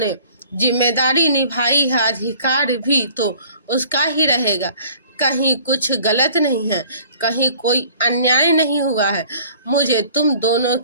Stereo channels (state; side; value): inverted; both; correlation -0.52